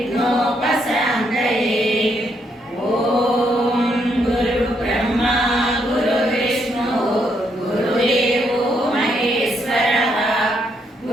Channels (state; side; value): normal; both; correlation 0.75